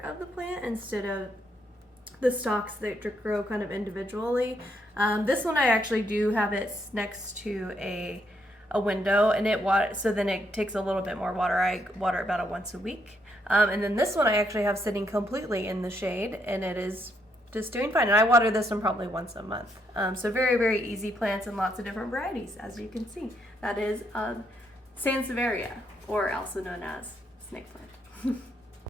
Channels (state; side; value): normal; both; correlation 0.75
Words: the plant instead of the stalks that grow kind of individually. This one I actually do have it next to a window, and so then it takes a little bit more water. I water about once a week. And then this one I actually have sitting completely in the shade, and it is just doing fine. And I water this one probably once a month. So very, very easy plants and lots of different varieties, as you can see. That is Sansevieria, or also known as snake plant.